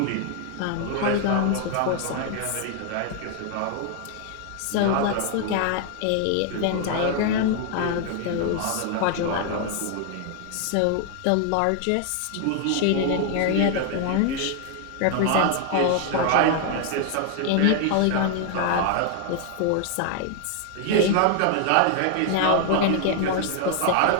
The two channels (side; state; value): both; different; correlation 0.00